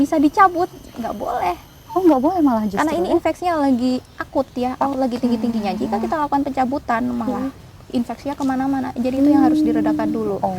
dicabut? Nggak boleh. Oh, nggak boleh malah justru. Karena ini infeksinya lagi akut ya, lagi tinggi-tingginya. Jika kita lakukan pencabutan, malah infeksinya kemana-mana. Jadi itu yang harus diredakan dulu.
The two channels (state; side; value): identical; both; correlation 1.00